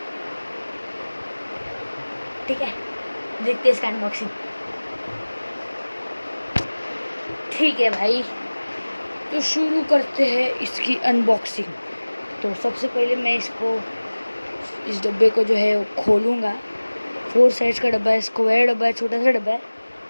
ठीक है, देखते हैं इसका अनबॉक्सिंग। ठीक है भाई, तो शुरू करते हैं इसकी अनबॉक्सिंग। तो सबसे पहले मैं इस डब्बे को जो है वो खोलूँगा। 4 साइज का डब्बा है, स्क्वायर डब्बा है, छोटा सा डब्बा है।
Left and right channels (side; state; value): both; inverted; correlation -1.00